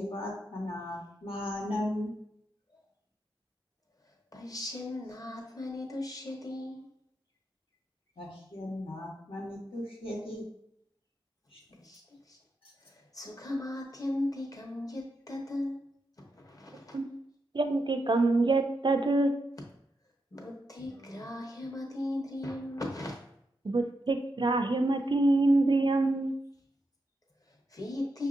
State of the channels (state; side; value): normal; both; correlation 0.85